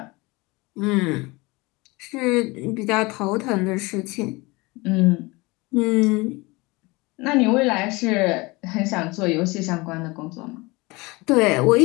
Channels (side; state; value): right; quieter; 24.1 dB